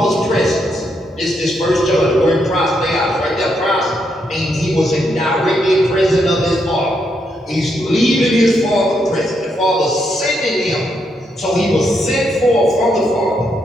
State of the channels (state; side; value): normal; both; correlation 0.79